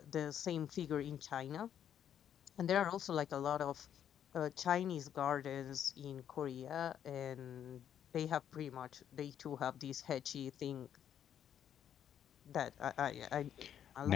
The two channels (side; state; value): right; quieter; 9.5 dB